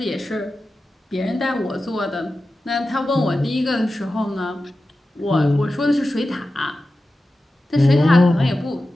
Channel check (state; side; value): normal; both; correlation 0.93